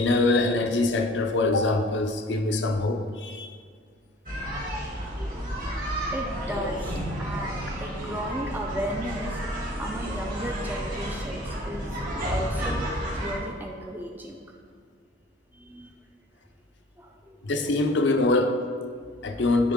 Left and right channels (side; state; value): both; normal; correlation 0.48